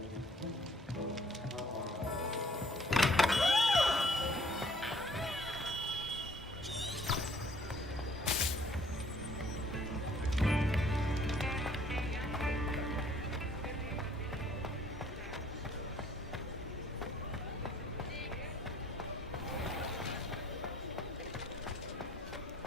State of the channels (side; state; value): both; normal; correlation 0.60